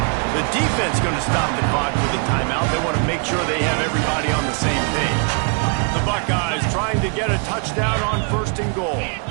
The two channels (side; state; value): left; quieter; 38.1 dB